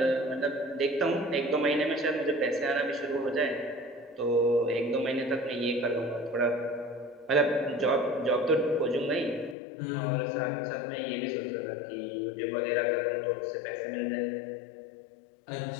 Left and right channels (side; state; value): right; drops out; at 9.6 s